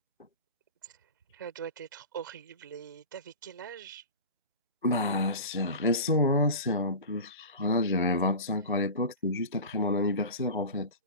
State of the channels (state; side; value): inverted; both; correlation -0.31